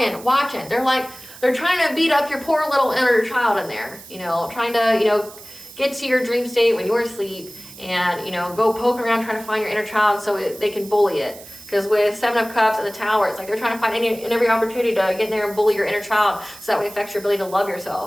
watching. They're trying to beat up your poor little inner child in there, you know, trying to, you know, get to your dream state when you're asleep and, you know, go poking around trying to find your inner child so they can bully it. Because with Seven of Cups and the Tower, it's like they're trying to find any and every opportunity to get in there and bully your inner child so that way it affects your ability to love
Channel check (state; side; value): noise; right; hiss, 18 dB below the sound